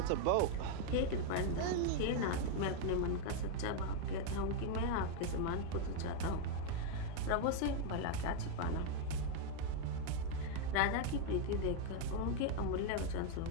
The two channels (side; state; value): both; different; correlation 0.00